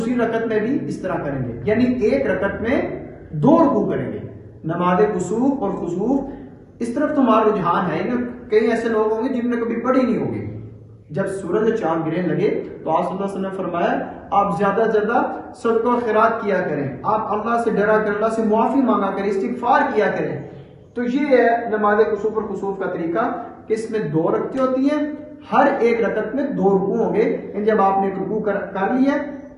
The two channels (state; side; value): identical; both; correlation 1.00